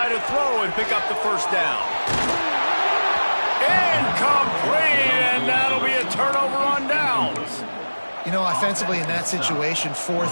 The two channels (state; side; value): inverted; both; correlation -1.00